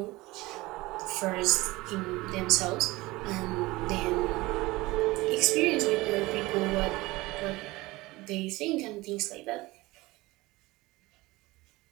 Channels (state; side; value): quieter; left; 20.6 dB